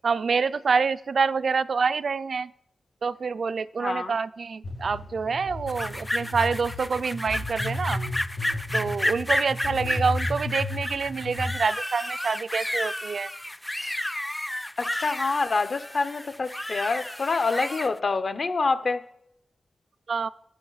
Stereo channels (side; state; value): both; normal; correlation 0.90